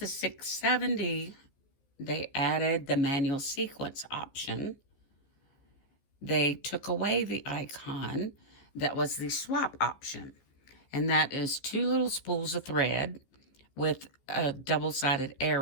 670, they added the manual sequence option, they took away the icon that was the swap option. And that is 2 little spools of thread with a double-sided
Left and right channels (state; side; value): late; right; 15 ms